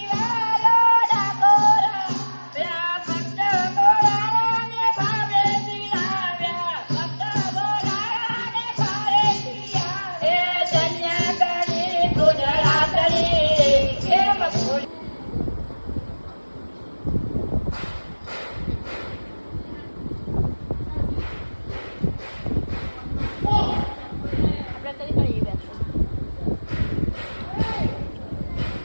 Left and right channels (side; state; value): both; inverted; correlation -1.00